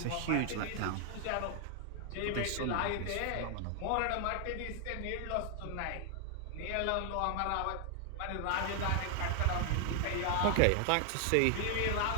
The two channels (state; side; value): different; both; correlation 0.00